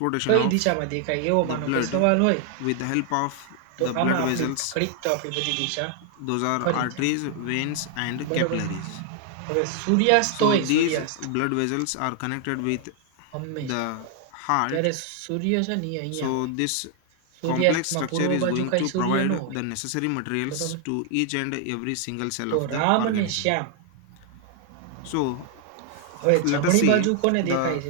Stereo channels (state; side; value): different; both; correlation 0.00